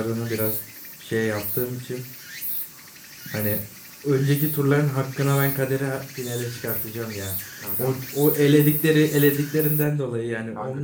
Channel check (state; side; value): identical; both; correlation 1.00